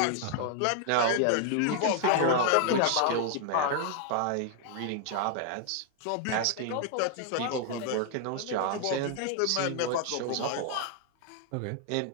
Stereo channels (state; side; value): different; both; correlation 0.00